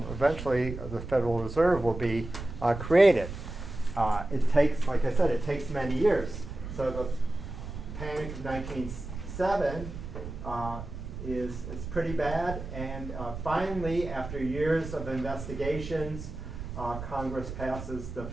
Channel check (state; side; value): noise; right; rumble, 9 dB below the sound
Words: the Federal Reserve will be created. It takes, like I said, it takes many years. So the Panic of 1907 is pretty bad, and finally, after years of investigations, Congress passes the